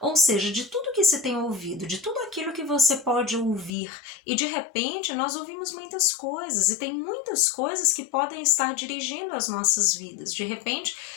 Ou seja, de tudo que se tem ouvido, de tudo aquilo que você pode ouvir, e de repente nós ouvimos muitas coisas, e tem muitas coisas que podem estar dirigindo as nossas vidas. De repente,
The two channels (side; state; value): right; drops out; at 3.7 s